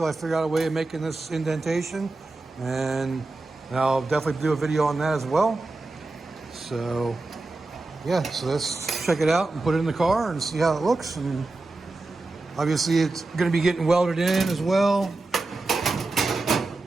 I figure out a way of making this indentation, and I'll definitely do a video on that as well. So yeah, so let's check it out and put it in the car and see how it looks. And obviously it's going to be getting welded in as well,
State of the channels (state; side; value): quieter; left; 3.2 dB